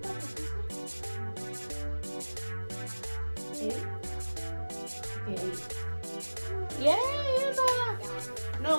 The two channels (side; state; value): both; inverted; correlation -1.00